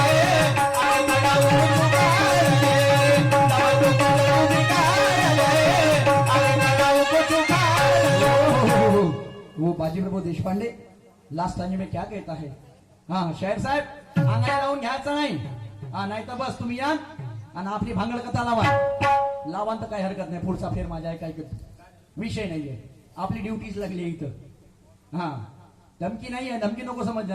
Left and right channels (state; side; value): identical; both; correlation 1.00